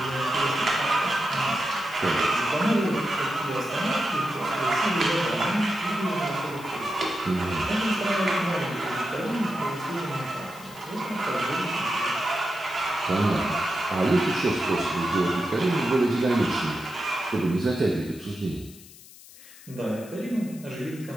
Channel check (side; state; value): left; noise; hiss, 20 dB below the sound